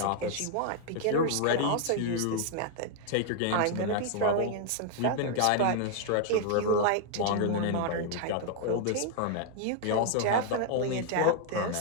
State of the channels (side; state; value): both; different; correlation 0.00